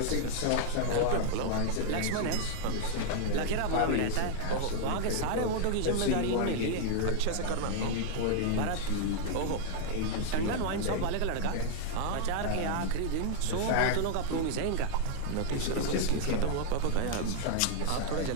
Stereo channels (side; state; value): both; different; correlation 0.00